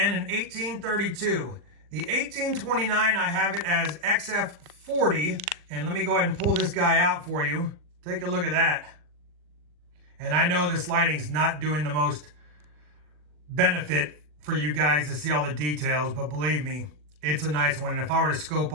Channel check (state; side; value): late; left; 40 ms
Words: an 1832. The 1829, I have it as XF40, and let me go ahead and pull this guy out for you. Take a look at that. And I know this lighting's not doing the most benefit for you guys to see all the details, but believe me, it's a nice one. And if I were to scope